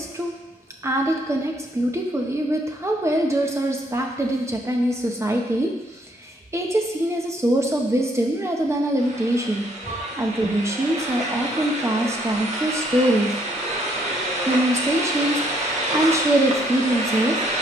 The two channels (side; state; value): both; normal; correlation 0.68